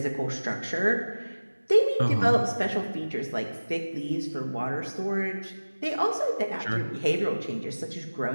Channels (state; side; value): inverted; both; correlation -1.00